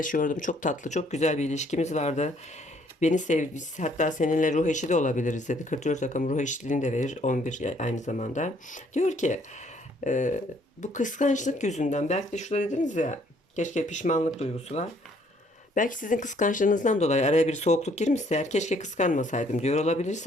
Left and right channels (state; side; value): normal; both; correlation 0.64